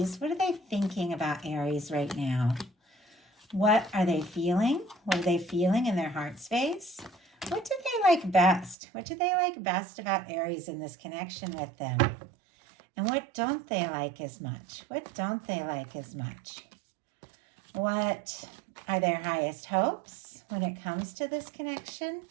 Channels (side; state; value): left; drops out; at 8.8 s